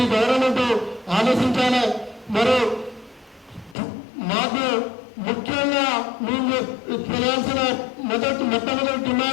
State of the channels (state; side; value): drops out; right; at 3.8 s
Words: గవర్నమెంట్ ఆలోచించాలి. మరి మాకు ముఖ్యంగా మేము చేయాల్సిన మొట్టమొదటి